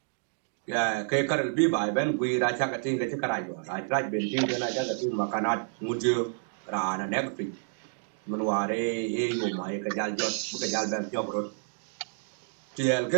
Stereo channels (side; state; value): left; silent; digital silence